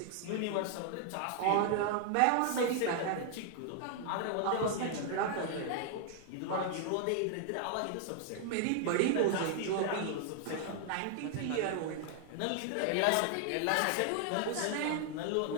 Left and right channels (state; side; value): different; both; correlation 0.00